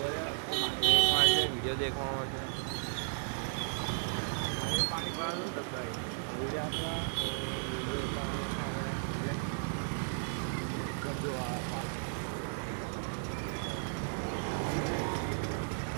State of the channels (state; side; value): silent; left; 55 dB below the other